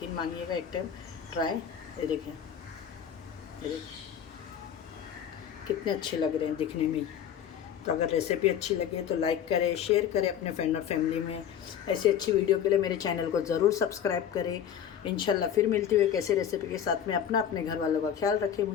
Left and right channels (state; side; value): quieter; right; 9.0 dB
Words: मानिएगा, एक टाइम ट्राई। ये देखें, ये देखें कितने अच्छे लग रहे हैं दिखने में। तो अगर रेसिपी अच्छी लगे तो लाइक करें, शेयर करें अपने फ्रेंड और फैमिली में। ऐसी अच्छी वीडियो के लिए मेरे चैनल को ज़रूर सब्सक्राइब करें। इंशाल्लाह फिर मिलती हुई कैसे रेसिपी के साथ में। अपने घर वालों का ख्याल रखें,